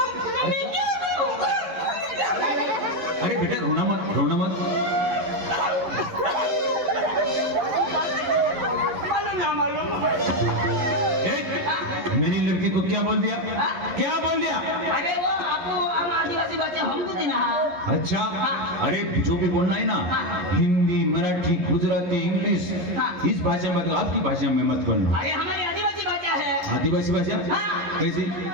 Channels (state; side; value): late; left; 11 ms